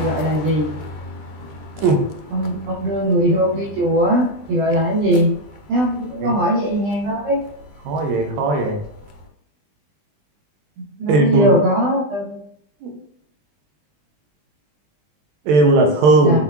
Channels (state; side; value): late; left; 20 ms